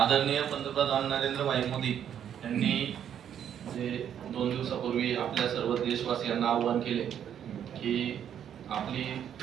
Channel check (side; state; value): left; quieter; 9.3 dB